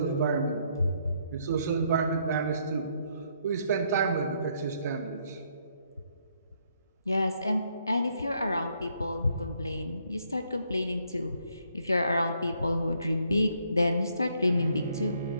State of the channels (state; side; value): inverted; both; correlation -0.71